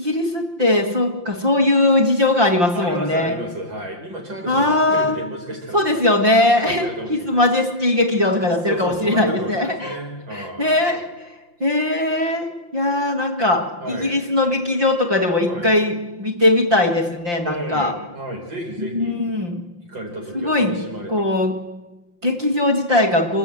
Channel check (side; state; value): left; late; 5.8 ms